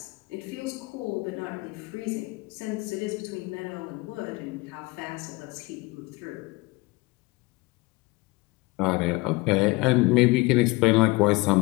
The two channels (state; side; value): quieter; right; 23.1 dB